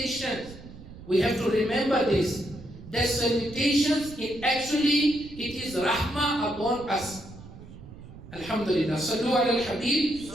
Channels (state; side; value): noise; right; rumble, 16 dB below the sound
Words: We have to remember this. That salutations, it is rahmah upon us. Alhamdulillah. Sallu ala al-Habib